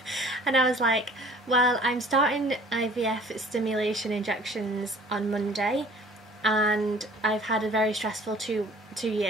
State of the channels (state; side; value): normal; both; correlation 0.51